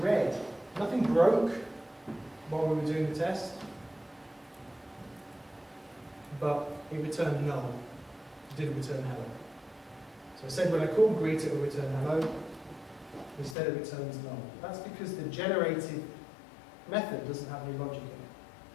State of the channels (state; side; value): drops out; right; at 13.6 s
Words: red. Nothing broke while we were doing the test, but it returned null. It didn't return hello. So I said when I call greet, it will return hello. Instead, it returns null. That's because the generated method doesn't have any logic in it.